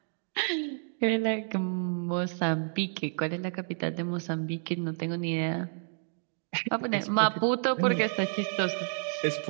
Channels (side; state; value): left; silent; 58 dB below the other